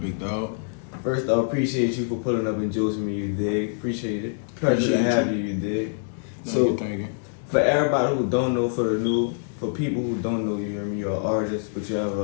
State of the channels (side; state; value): right; silent; digital silence